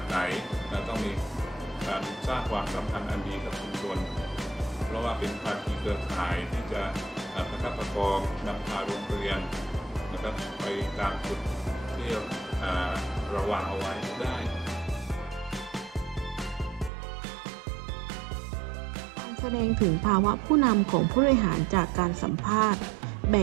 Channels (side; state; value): left; drops out; at 16.9 s